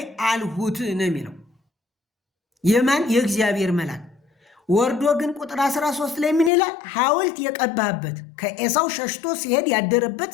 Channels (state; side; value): drops out; right; at 6.5 s